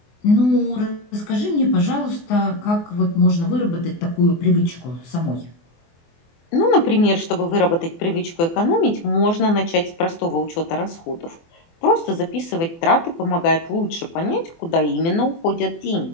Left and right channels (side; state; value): right; late; 24 ms